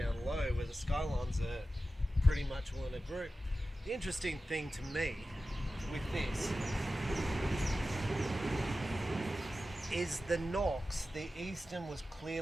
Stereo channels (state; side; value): normal; both; correlation 0.94